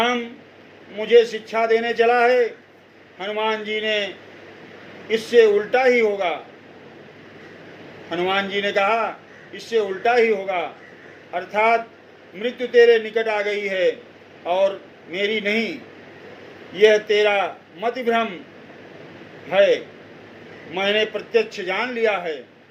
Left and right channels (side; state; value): both; identical; correlation 1.00